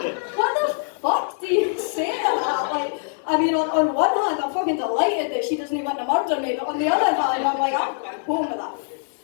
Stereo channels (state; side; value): silent; right; digital silence